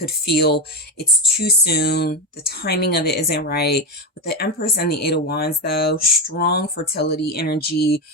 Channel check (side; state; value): both; normal; correlation 0.13